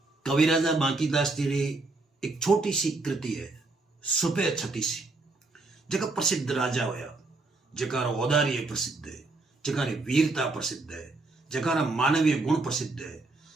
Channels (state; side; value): quieter; left; 3.4 dB